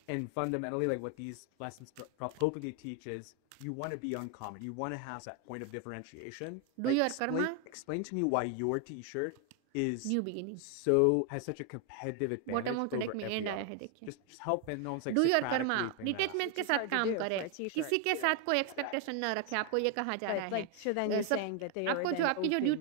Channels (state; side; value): different; both; correlation 0.01